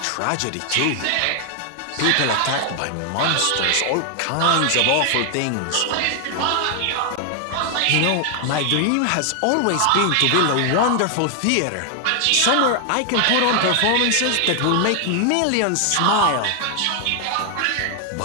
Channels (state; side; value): different; both; correlation 0.00